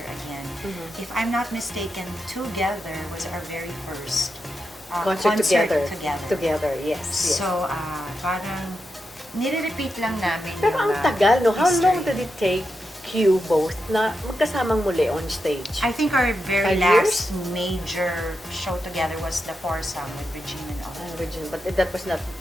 again. If I'm not mistaken, Together was our very first Concert together. together. Yes. Yes. So, parang nire-repeat lang namin Pero yung, ang tagal, no? How history. long did it take you both na magkasamang muli on stage? I think our very 5 last major show together was the foursome with Regina and all. Regina, but that was not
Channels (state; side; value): normal; both; correlation 0.87